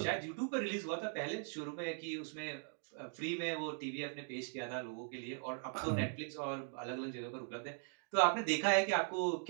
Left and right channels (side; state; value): left; silent; 51 dB below the other